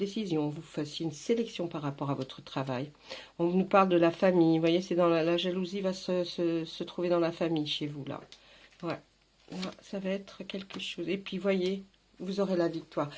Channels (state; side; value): identical; both; correlation 1.00